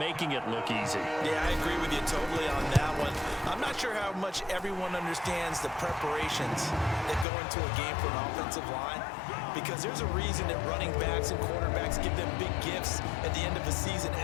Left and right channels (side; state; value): right; drops out; at 7.2 s